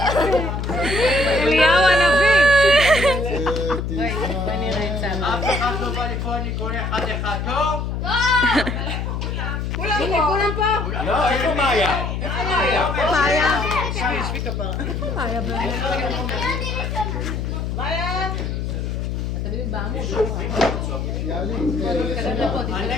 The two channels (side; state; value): left; noise; hum, 2 dB below the sound